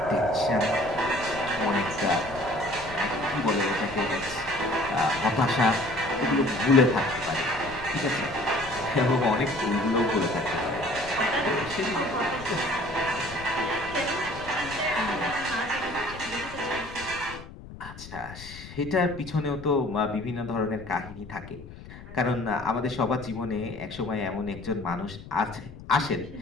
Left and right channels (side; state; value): left; noise; rumble, 15 dB below the sound